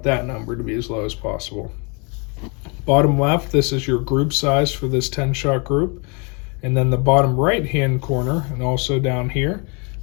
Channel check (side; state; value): right; quieter; 33.0 dB